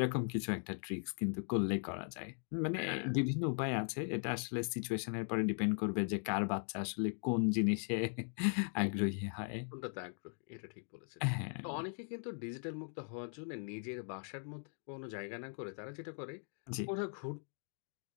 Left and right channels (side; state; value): right; silent; 52 dB below the other